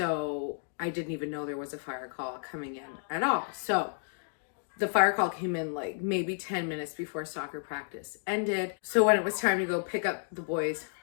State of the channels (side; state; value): right; silent; digital silence